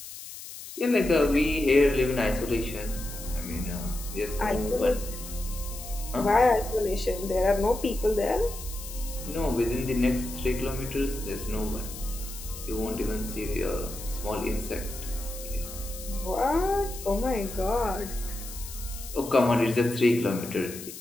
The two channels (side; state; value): left; noise; hiss, 12 dB below the sound